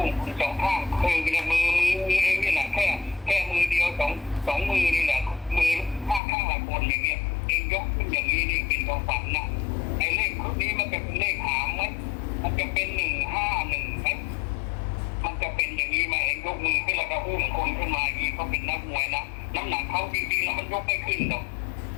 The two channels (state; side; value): drops out; right; at 6.2 s